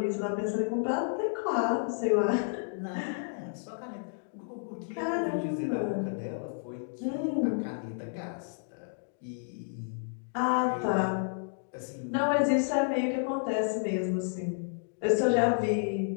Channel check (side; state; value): right; silent; digital silence